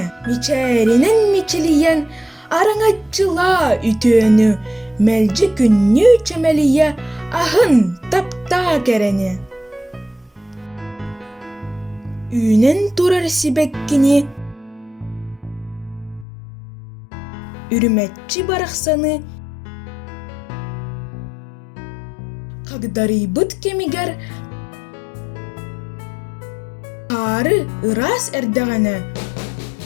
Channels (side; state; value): right; drops out; at 16.2 s